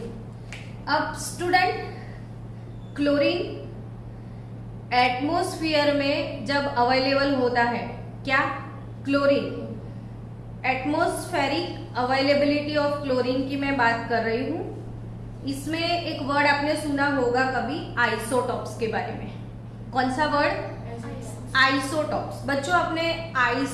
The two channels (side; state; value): both; identical; correlation 1.00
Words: अब स्टूडेंट, क्लोरीन एटमॉस्फेयर में जब अवेलेबल होता है, क्या chlorine, atmospheric availability of chlorine की मैं बात कर रही हूं। इसमें एक वर्ड आपने सुना होगा कभी आइसोटॉप्स के बारे में। कौन सा वर्ड? आइसोटॉप्स। बच्चों आपने